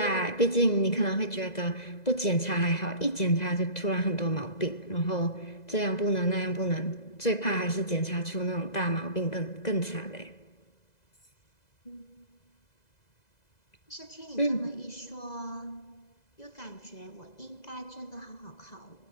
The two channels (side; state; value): right; late; 2.0 ms